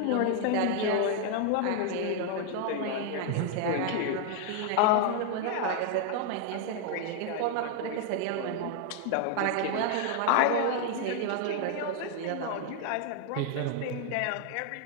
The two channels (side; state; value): both; different; correlation 0.00